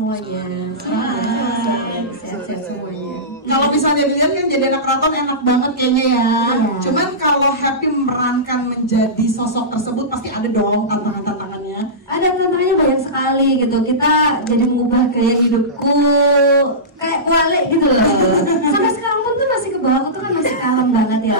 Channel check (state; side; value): normal; both; correlation -0.19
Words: Sehat-sehat semuanya. Kalau misalnya dilihat kan jadi anak keraton enak banget kayaknya ya. Cuman kalau Happy memerankan menjadi sosok tersebut pasti ada dong tantangan-tantangannya. Ada tantangannya banyak sekali gitu. Kita jadi mengubah gaya hidupku kayak kualik gitu loh. Sampai sekarang pun tuh masih ke bawah tuh kan masih kalem banget ya